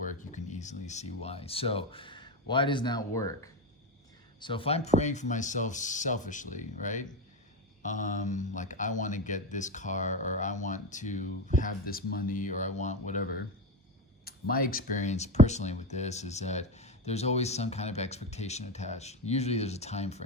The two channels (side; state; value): both; normal; correlation 0.16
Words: You can easily see why. So why does that work? So if I'm praying for myself selfishly, right? Like I want to get this car, or I want to have this money, or I want whatever. My experience personally with this is that there's always some kind of expectation attached. Usually there's a time